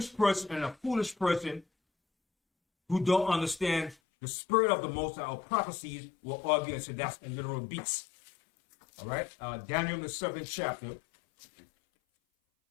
person and a foolish person who don't understand the spirit of the Most High or prophecies will argue and say that's a literal beast. All right? Daniel, the 7th chapter.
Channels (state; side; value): drops out; right; at 4.0 s